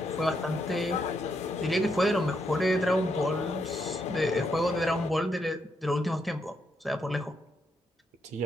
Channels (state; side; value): normal; both; correlation 0.78